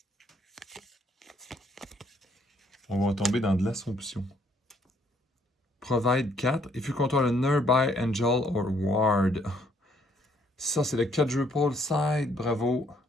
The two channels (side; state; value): both; normal; correlation 0.66